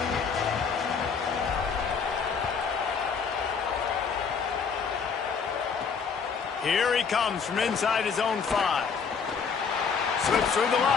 Here he comes from inside his own 5. Slips through the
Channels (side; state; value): right; quieter; 5.9 dB